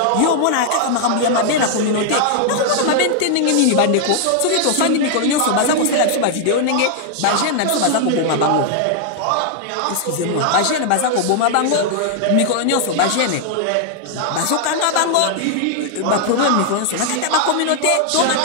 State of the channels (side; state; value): both; different; correlation 0.00